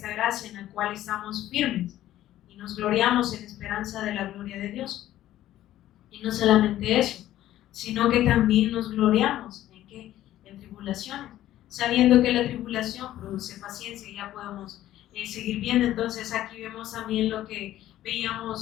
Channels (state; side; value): quieter; right; 13.5 dB